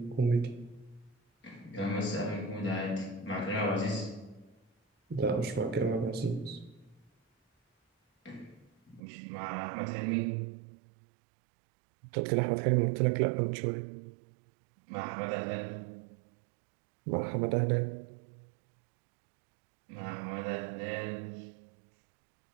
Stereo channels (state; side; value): drops out; left; at 9.0 s